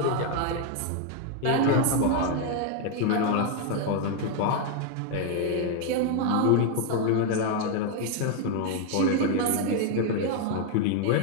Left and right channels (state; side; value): different; both; correlation 0.00